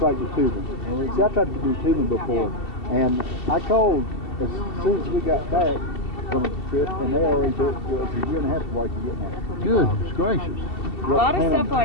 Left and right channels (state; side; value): late; right; 2.7 ms